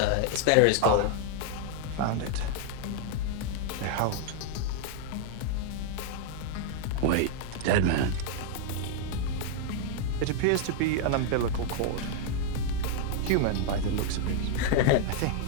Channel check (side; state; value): both; different; correlation 0.00